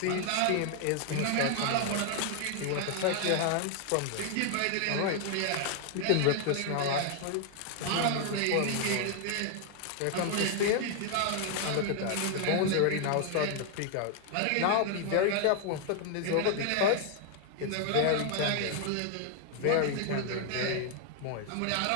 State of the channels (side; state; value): both; different; correlation 0.00